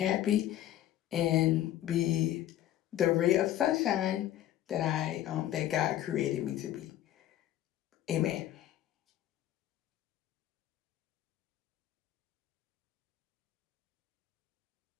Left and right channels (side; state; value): right; quieter; 12.9 dB